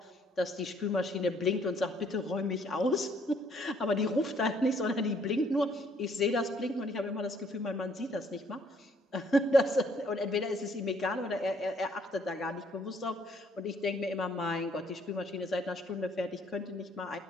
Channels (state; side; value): normal; both; correlation 0.64